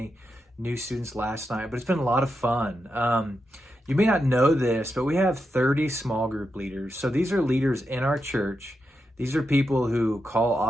new students last night, but it's been a lot of fun. You may not know this, but we have 30 small group leaders. So these are leaders in our church. These are people who call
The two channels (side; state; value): both; normal; correlation 0.86